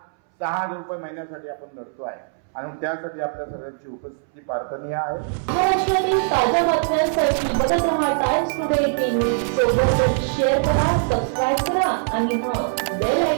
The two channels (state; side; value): silent; left; 64 dB below the other